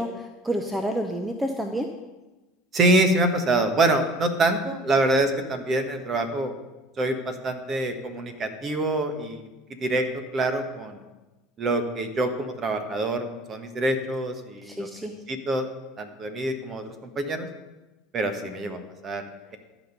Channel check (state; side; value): normal; both; correlation 0.48